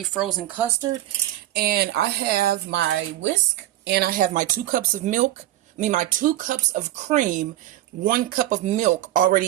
frozen custard, and I have my whisk and I have my 2 cups of milk, my 2 cups of cream, 1 cup of milk already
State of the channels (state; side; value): quieter; left; 14.2 dB